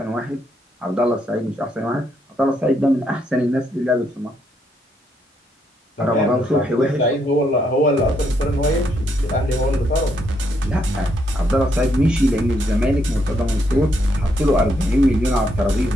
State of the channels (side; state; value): both; normal; correlation 0.75